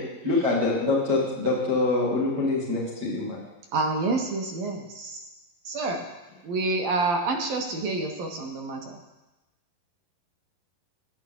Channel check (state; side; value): late; left; 12 ms